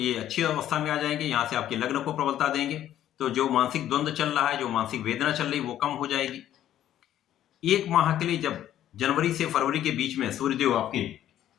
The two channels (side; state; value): right; quieter; 11.8 dB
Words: अच्छी अवस्था में आ जाएंगे, यहां से आपके लग्न को प्रबलता देंगे। तो जो मानसिक द्वंद्व चल रहा है, जो मानसिक वेदना चल रही है, वो कम हो जाएगी। एक माह के लिए जब जनवरी से फरवरी के बीच में सूर्यदेव आपके